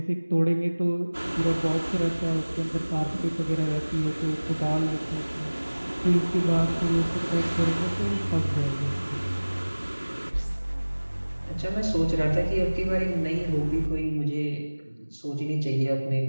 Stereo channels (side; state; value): both; inverted; correlation -1.00